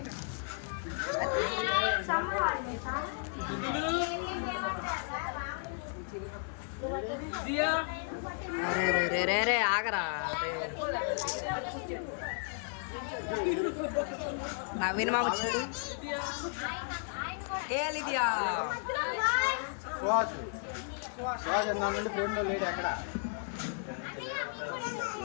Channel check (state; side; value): silent; right; 55 dB below the other